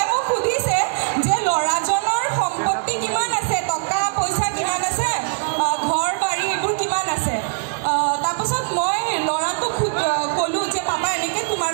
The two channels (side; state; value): left; silent; digital silence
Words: মোক সুধিছে যে ল'ৰাজনৰ সম্পত্তি কিমান আছে টকা পইচা কিমান আছে ঘৰ বাৰী সেইবোৰ কিমান আছে তাৰপাছত মই ল'ৰাটোক ক'লোঁ যে পাপা এনেকৈ তোমাৰ